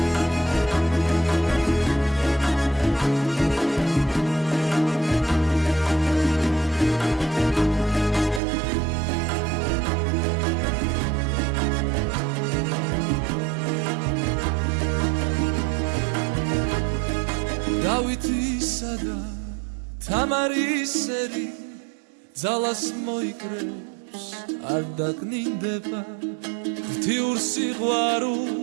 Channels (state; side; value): drops out; left; at 8.4 s